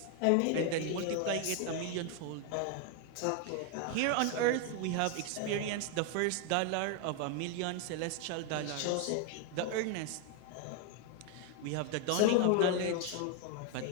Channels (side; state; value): both; different; correlation 0.01